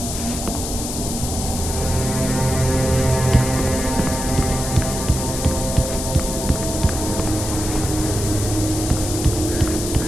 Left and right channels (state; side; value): noise; left; hiss, 6 dB below the sound